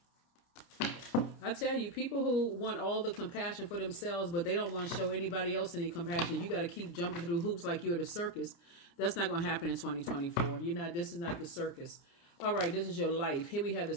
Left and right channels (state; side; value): late; right; 29 ms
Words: I tell you, people who want all the compassion for themselves, but they don't want to show anybody else any compassion. You got to keep jumping through hoops like you're at a circus. That's not going to happen in 2024. This is not the circus. All right, this is your life. Here we have the